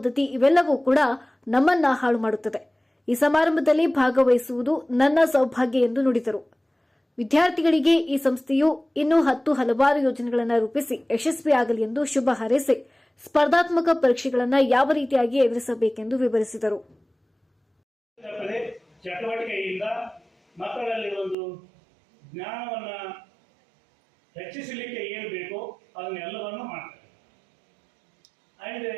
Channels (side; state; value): left; drops out; at 21.4 s